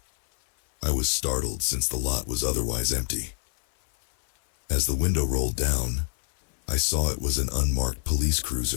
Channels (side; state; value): right; silent; 57 dB below the other